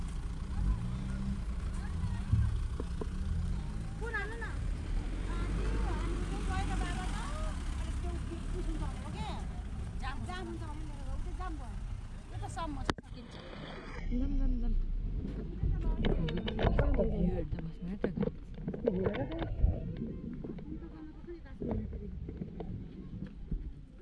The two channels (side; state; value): both; identical; correlation 1.00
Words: Dam dam dam.